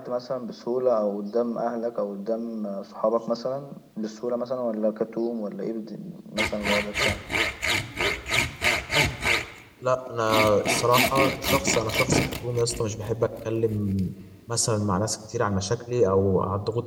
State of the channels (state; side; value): identical; both; correlation 1.00